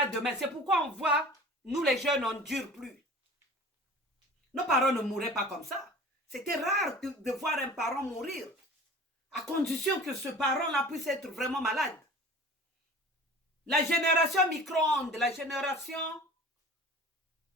demain? C'est pourquoi on voit, nous les jeunes, on ne dure plus. Nos parents ne mouraient pas comme ça. C'était rare de voir un parent mourir, à condition que ce parent-là puisse être vraiment malade. La génération micro-ondes, la génération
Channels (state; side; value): normal; both; correlation 0.42